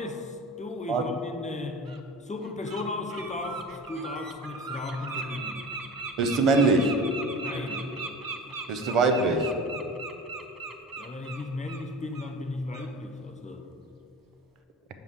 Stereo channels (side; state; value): both; normal; correlation 0.35